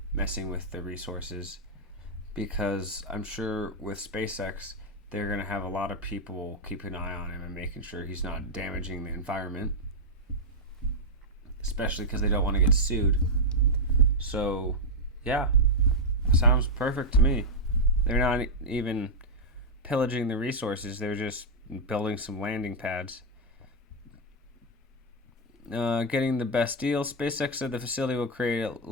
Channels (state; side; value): normal; both; correlation -0.02